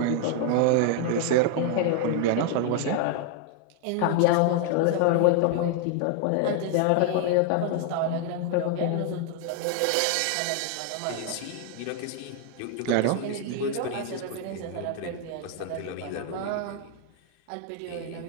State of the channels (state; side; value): different; both; correlation 0.00